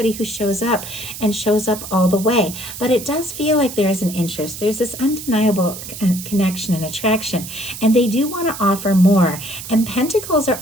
who shows up and shows up all the way. But it does feel like there is an interest. There's this undeniable connection and attraction, and they do want to offer more. And Pentacles are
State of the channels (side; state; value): right; noise; hiss, 10 dB below the sound